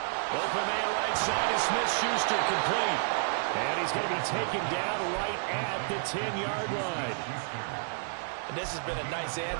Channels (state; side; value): silent; left; digital silence